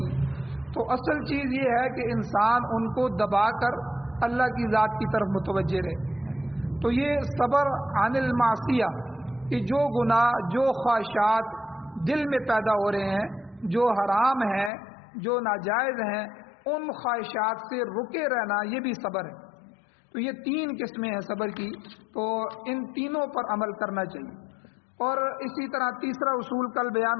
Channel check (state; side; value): drops out; right; at 14.7 s